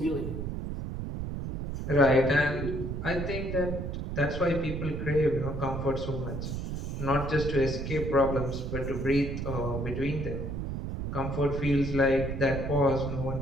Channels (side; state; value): right; noise; rumble, 4 dB below the sound